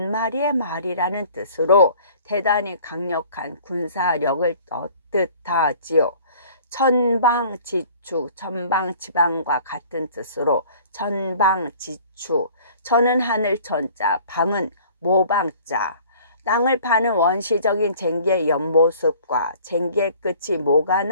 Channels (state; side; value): inverted; both; correlation -0.50